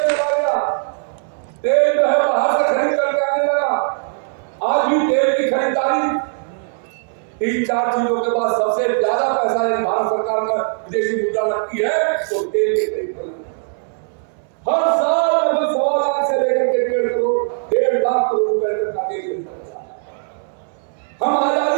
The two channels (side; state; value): left; silent; 64 dB below the other